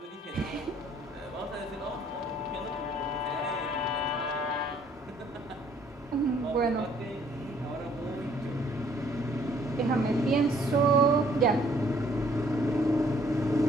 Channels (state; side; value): normal; both; correlation 0.62